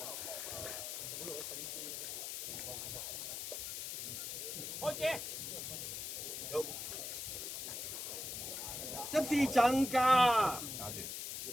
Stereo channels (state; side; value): noise; left; hiss, 5 dB below the sound